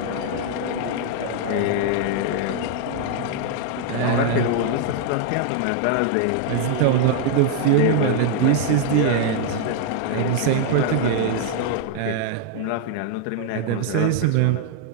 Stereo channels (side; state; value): both; different; correlation 0.00